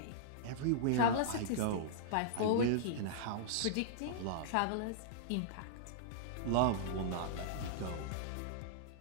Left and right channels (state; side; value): different; both; correlation -0.02